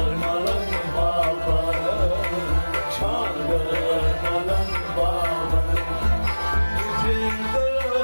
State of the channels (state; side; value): inverted; both; correlation -1.00